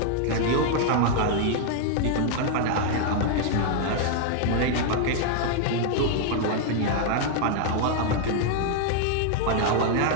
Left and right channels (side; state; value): both; different; correlation 0.00